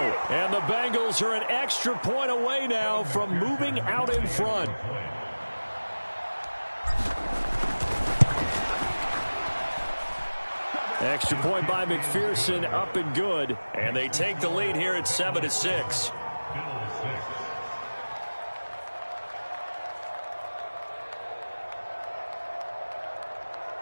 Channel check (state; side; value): inverted; both; correlation -1.00